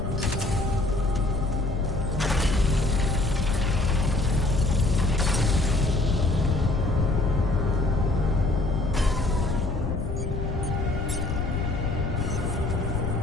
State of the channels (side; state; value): left; noise; rumble, 4 dB below the sound